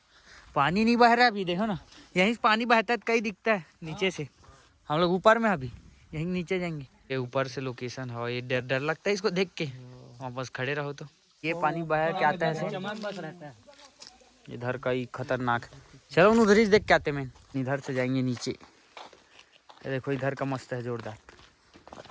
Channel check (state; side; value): identical; both; correlation 1.00